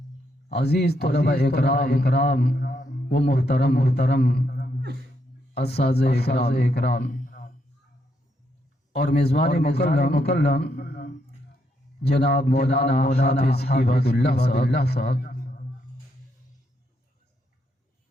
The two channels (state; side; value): normal; both; correlation 0.77